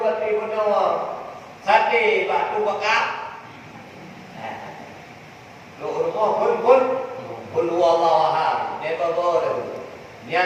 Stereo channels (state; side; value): identical; both; correlation 1.00